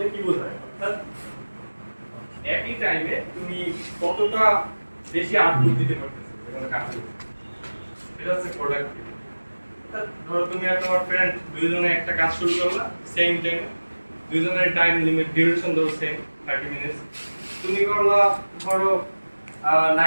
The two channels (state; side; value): inverted; both; correlation -1.00